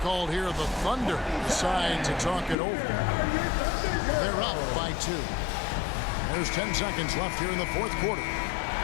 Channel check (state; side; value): drops out; right; at 2.6 s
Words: here. The Thunder decide to talk it over. They're up by 2. There's 10 seconds left here in the fourth quarter.